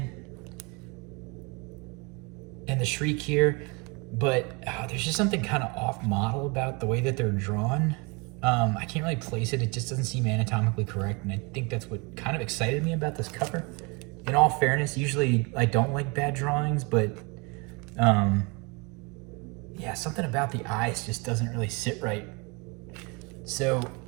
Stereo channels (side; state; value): left; quieter; 29.6 dB